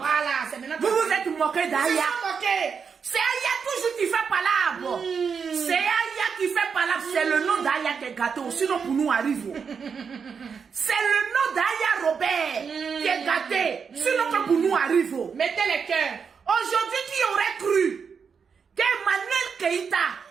c'est maintenant. Vous vous êtes moqués d'Aya. moqué. C'est Aya toujours qui fait palabre. C'est Aya qui fait palabre. C'est le nom d'Aya qui est gâté. Sinon, pour nous, arrive. C'est le nom d'Aya Robert qui est gâté. Sinon, que pour nous, arrive. Mettez les cœurs. Aujourd'hui, qui aurait cru qu'Emmanuel Keïta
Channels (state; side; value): quieter; left; 6.2 dB